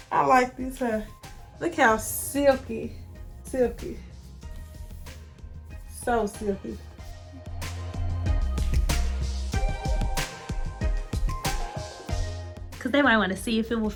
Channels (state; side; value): identical; both; correlation 1.00